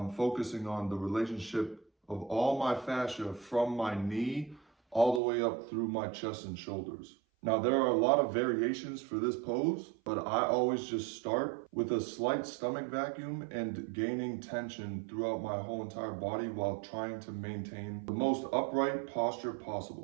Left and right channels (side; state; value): left; drops out; at 5.2 s